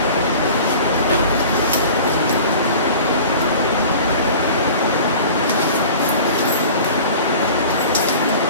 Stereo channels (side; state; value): both; inverted; correlation -0.42